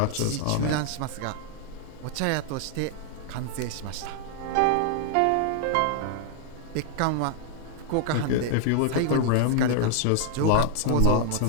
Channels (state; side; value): different; both; correlation 0.00